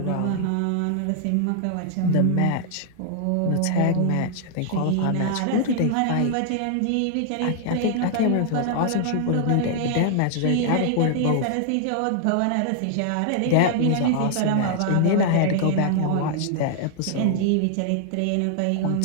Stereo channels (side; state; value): both; different; correlation 0.00